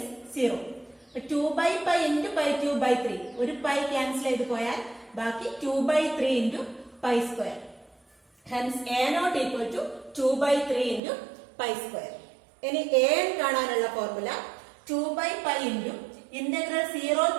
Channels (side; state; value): left; drops out; at 11.0 s